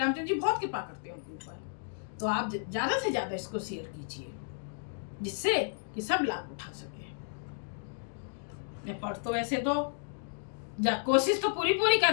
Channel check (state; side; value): silent; right; digital silence